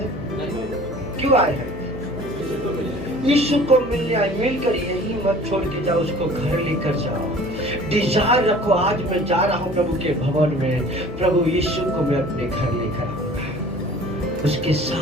क्यों आए हैं? यीशु को मिलने आए। मिलकर यही मत छोड़ के जाओ, उसको घर लेकर जाओ। डिजायर रखो, आज मैं जा रहा हूँ प्रभु के भवन में, प्रभु यीशु को मैं अपने घर लेकर आऊंगा, उसके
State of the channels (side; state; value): left; noise; hum, 11 dB below the sound